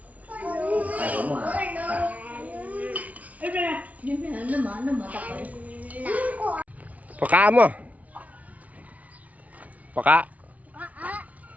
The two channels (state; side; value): late; left; 0.069 ms